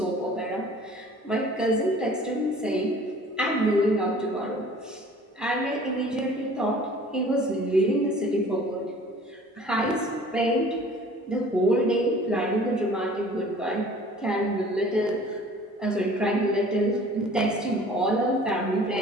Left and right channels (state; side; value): normal; both; correlation 0.49